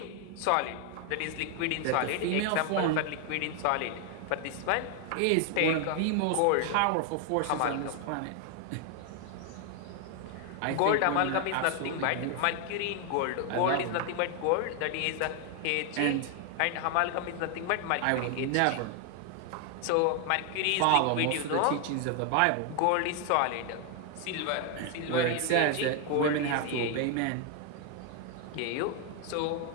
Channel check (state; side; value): different; both; correlation 0.00